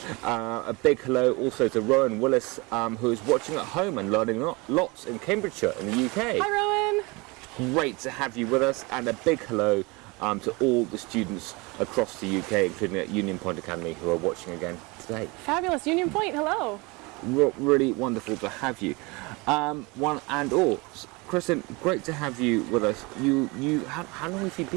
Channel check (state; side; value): quieter; left; 26.1 dB